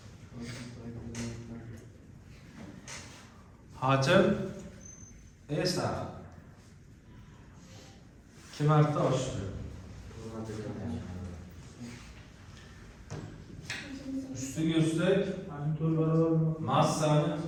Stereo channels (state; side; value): identical; both; correlation 1.00